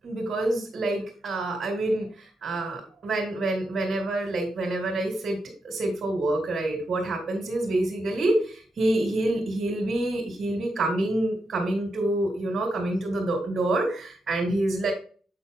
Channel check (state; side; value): normal; both; correlation 0.84